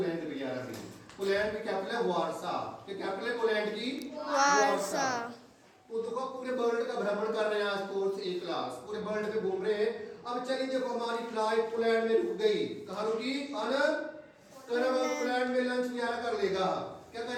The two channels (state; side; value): identical; both; correlation 1.00